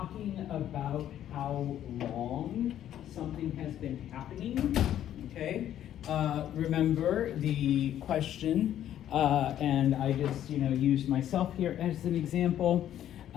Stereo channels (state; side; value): quieter; right; 11.2 dB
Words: about how long something has been happening, okay? Remember the question, and I just, used myself here as an example.